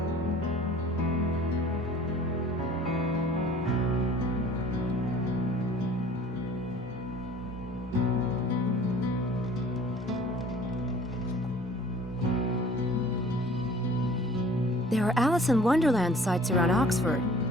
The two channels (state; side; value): normal; both; correlation 0.49